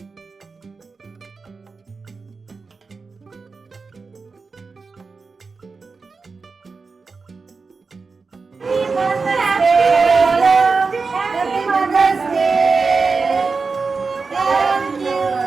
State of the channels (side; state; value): left; quieter; 4.5 dB